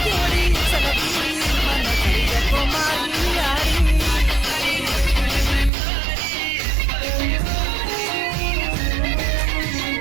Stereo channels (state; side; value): drops out; left; at 5.7 s